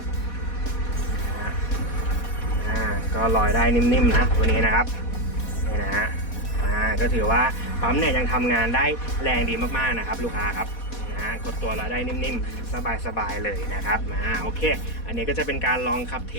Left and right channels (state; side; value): late; right; 4.2 ms